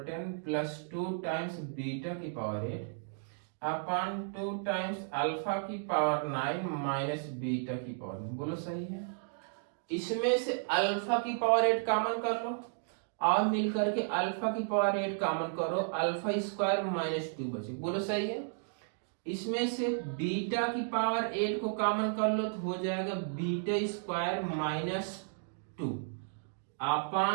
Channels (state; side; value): silent; left; digital silence